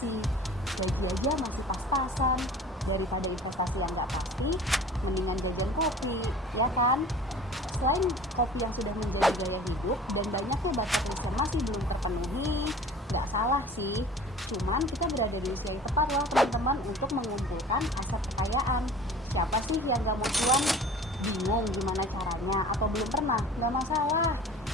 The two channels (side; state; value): both; normal; correlation 0.43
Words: gaji aja masih pas-pasan. Daripada investasi yang nggak pasti, mendingan jajan kopi, ya kan? Selain kopi yang sudah menjadi gaya hidup dan banyaknya bucket list yang masih belum terpenuhi, nggak salah sih. Cuman kita berada di usia yang tepat loh teman-teman untuk mengumpulkan aset kekayaan. Siapa sih yang nggak mau cuan? Bingung gimana caranya atau belum pernah? Nggak masalah.